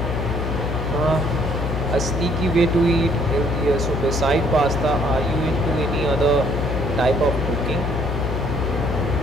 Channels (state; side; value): noise; left; hum, 3 dB below the sound